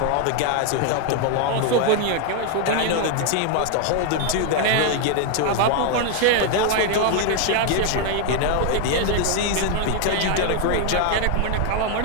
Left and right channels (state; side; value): different; both; correlation 0.00